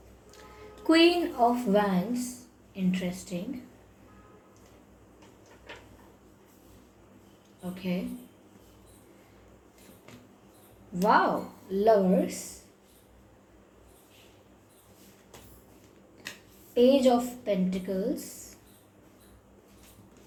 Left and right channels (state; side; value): identical; both; correlation 1.00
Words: Queen of wands, interesting. Okay, wow, lovers, page of pentacles